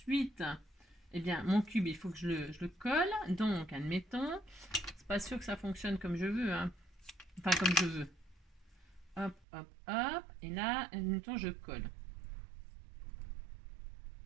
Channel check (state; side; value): drops out; left; at 9.5 s